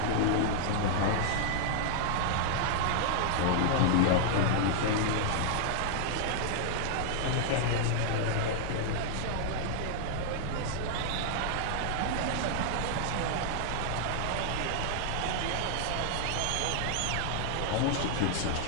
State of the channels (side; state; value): both; different; correlation -0.01